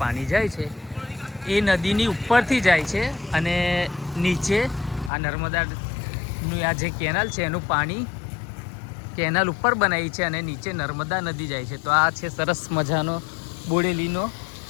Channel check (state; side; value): drops out; right; at 5.1 s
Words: પાણી જાય છે એ નદીની ઉપરથી જાય છે, અને નીચે આ નર્મદાનું આ જે કેનાલ છે એનું પાણી કેનાલ ઉપર બનાવી છે, અને નીચે નર્મદા નદી જાય છે. તો આ છે સરસ મજાનો બોડેલીનો